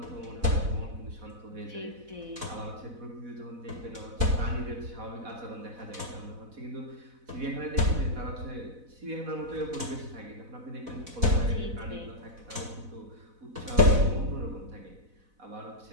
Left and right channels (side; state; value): left; late; 4.0 ms